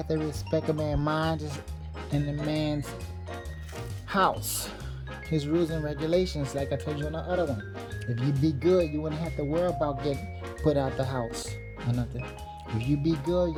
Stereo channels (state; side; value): identical; both; correlation 1.00